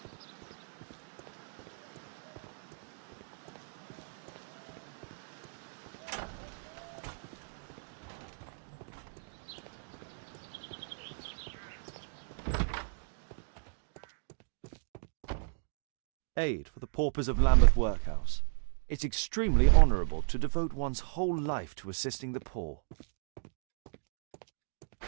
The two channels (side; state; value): left; silent; digital silence